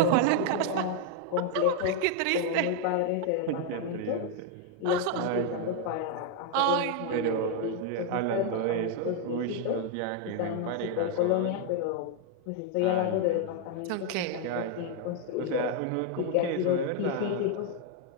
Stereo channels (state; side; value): different; both; correlation 0.01